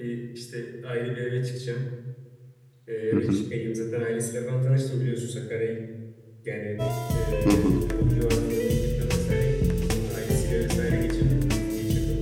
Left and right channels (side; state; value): both; identical; correlation 1.00